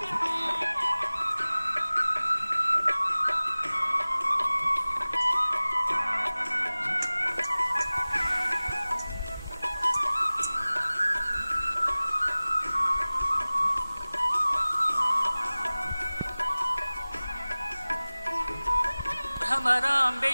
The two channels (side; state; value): both; inverted; correlation -0.99